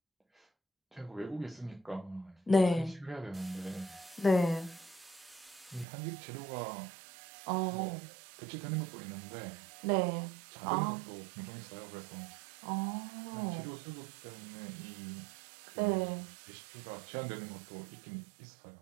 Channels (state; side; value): drops out; left; at 5.9 s